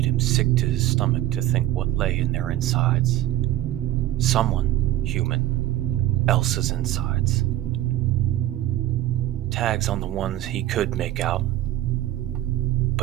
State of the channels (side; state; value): left; quieter; 14.3 dB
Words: him sick to his stomach to think what lay in their insides. Someone, human, else's insides. Tags on the ones he could make out,